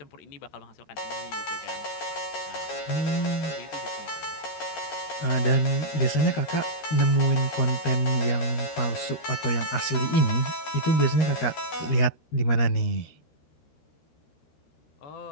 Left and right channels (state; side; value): late; right; 13 ms